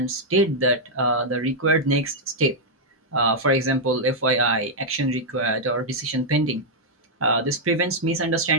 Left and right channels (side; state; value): both; normal; correlation -0.03